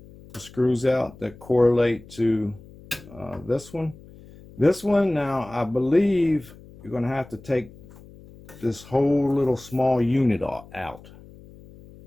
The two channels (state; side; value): noise; left; hum, 21 dB below the sound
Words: the screws out that correlate to this one. This one, now I believe you're going to have to take this whole little small unit out,